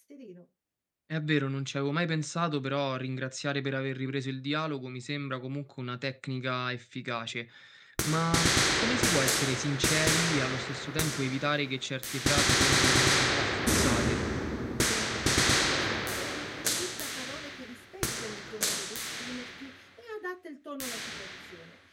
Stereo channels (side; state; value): both; identical; correlation 1.00